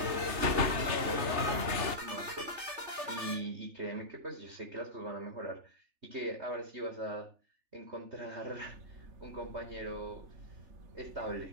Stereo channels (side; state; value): left; late; 3.3 ms